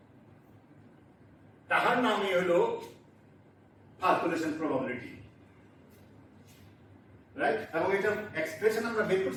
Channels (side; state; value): both; identical; correlation 1.00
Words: তাহার নামই হলো calculation probability, right? এবং এটা এক্সপ্রেশন আমরা বের